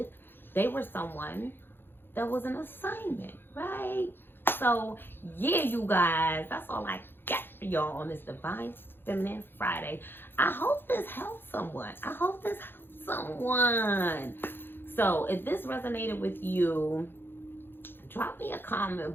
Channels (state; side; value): late; right; 0.10 ms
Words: They were someone that was an assignment, right? So, yeah, you guys, that's all I got for y'all on this Divine Feminine Friday. I hope this helps someone. So, if this resonated with you, drop me a